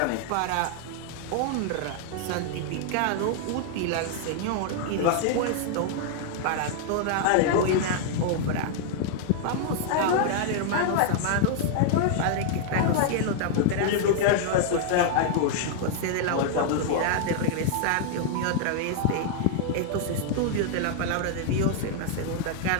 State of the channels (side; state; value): both; different; correlation -0.01